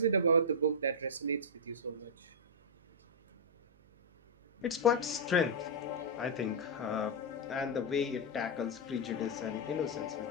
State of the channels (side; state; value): right; noise; hum, 29 dB below the sound